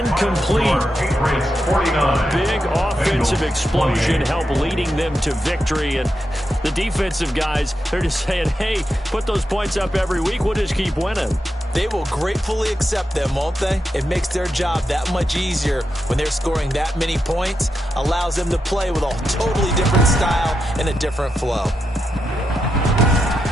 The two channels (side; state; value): both; normal; correlation 0.86